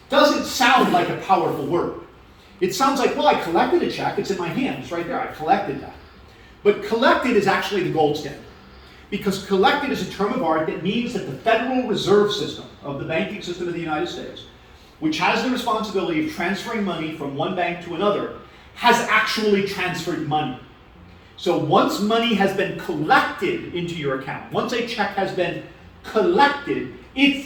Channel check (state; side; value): identical; both; correlation 1.00